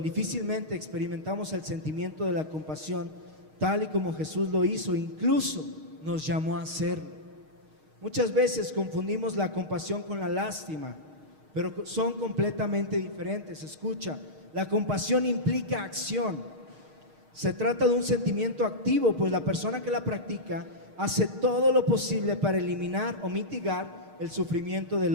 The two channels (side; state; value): left; late; 6.5 ms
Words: difícilmente experimentamos el sentimiento de la compasión tal y como Jesús lo hizo, incluso nos llamó a hacerlo. Muchas veces confundimos la compasión con la lástima, pero son completamente diferentes. Escucha, la compasión implica acción. Se trata de un sentimiento activo, pues la persona que la practica hace todo lo posible para eliminar o mitigar el sufrimiento